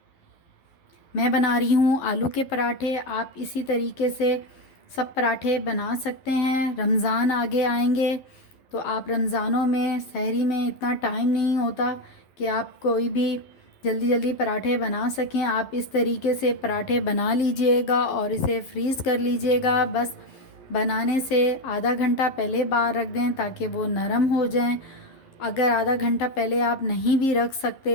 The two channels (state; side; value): late; right; 11 ms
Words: मैं बना रही हूं आलू के पराठे। आप इसी तरीके से सब पराठे बना सकते हैं। रमज़ान आगे आएंगे तो आप रमज़ानों में सहरी में इतना टाइम नहीं होता कि आप कोई भी जल्दी जल्दी पराठे बना सकें। आप इस तरीके से पराठे बना लीजिएगा और इसे फ्रीज़ कर लीजिएगा। बस बनाने से आधा घंटा पहले बाहर रख दें ताकि वो नरम हो जाएं। अगर आधा घंटा पहले आप नहीं भी रख